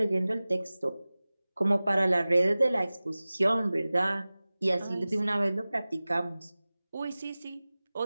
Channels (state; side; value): inverted; both; correlation -0.98